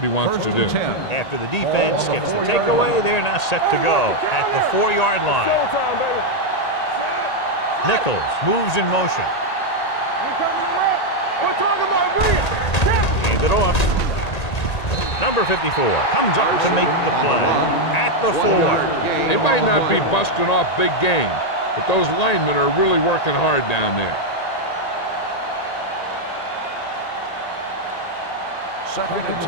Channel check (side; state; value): right; late; 1.8 ms